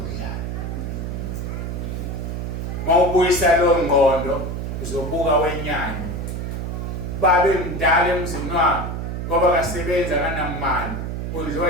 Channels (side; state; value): right; noise; hum, 4 dB below the sound